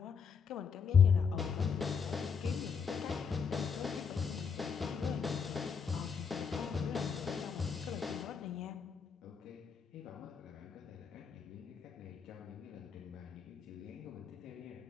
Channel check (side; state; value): right; quieter; 6.2 dB